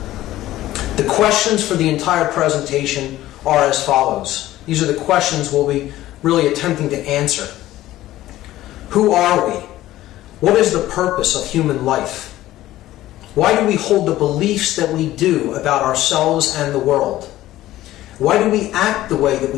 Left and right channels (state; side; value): quieter; right; 15.2 dB